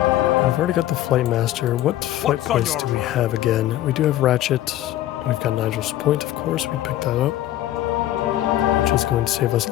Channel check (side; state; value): right; quieter; 13.7 dB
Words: I've already got the Flight Master. What flight points do we have again? We do have Ratchet. We've got Nigel's Point, of course. We picked that up, which is going to save us